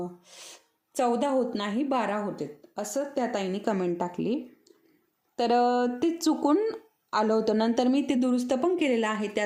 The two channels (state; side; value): identical; both; correlation 1.00